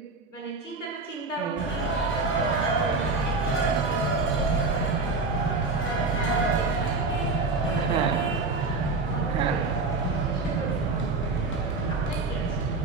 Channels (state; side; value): quieter; left; 3.8 dB